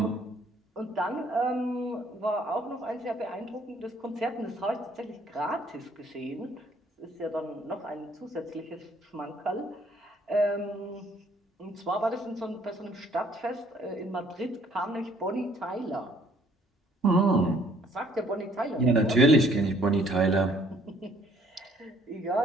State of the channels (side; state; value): both; normal; correlation 0.62